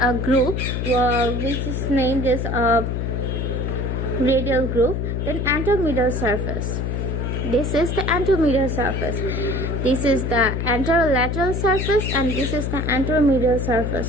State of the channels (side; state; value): left; noise; hum, 1 dB below the sound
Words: groove which is named as a radial groove. Then anteromedial surface. This is the anteromedial surface. This is the anterolateral surface and this is the anteromedial